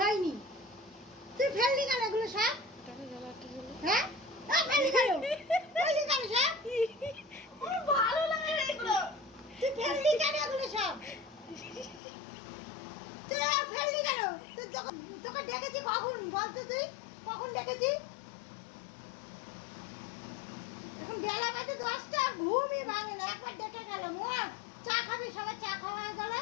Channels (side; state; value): right; drops out; at 12.0 s